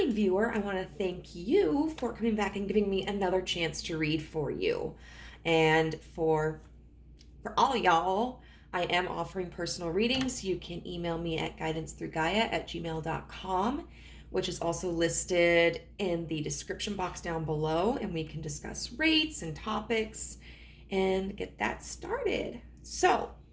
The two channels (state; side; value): identical; both; correlation 1.00